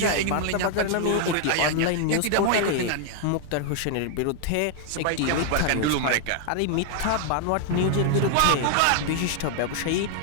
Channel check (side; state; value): both; different; correlation 0.00